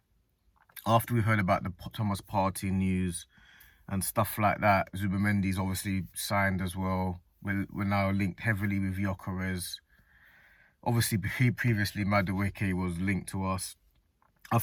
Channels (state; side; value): identical; both; correlation 1.00